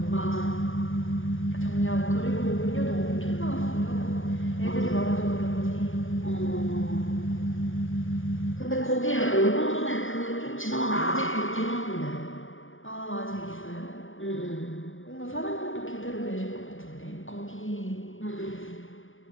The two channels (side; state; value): right; late; 0.58 ms